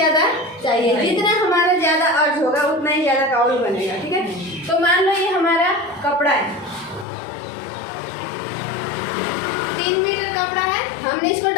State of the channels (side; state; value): right; drops out; at 7.1 s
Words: चाहिए, जितना हमारा ज़्यादा अर्ज होगा उतना ही ज़्यादा काउल बनेगा, ठीक है। तो मान लो ये हमारा कपड़ा है, 3 मीटर कपड़ा है, हमने इसको